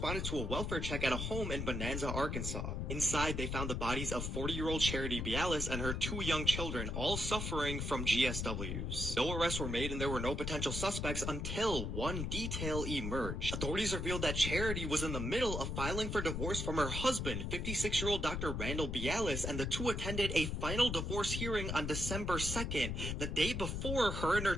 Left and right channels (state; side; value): noise; left; rumble, 2 dB below the sound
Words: to a welfare check at a home in Bonanza, Arkansas. Inside, they found the bodies of 40-year-old Charity Bellis and her 2 young children, all suffering from GSWs. No arrests were made, and there were no potential suspects until one detail emerged. Authorities revealed that Charity was in the middle of filing for divorce from her husband, 56-year-old Dr. Randall Bialis, and the two attended a final divorce hearing on December 2nd, the day before her and her